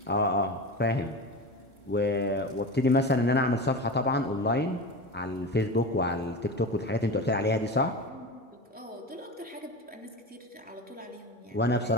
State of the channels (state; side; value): normal; both; correlation 0.26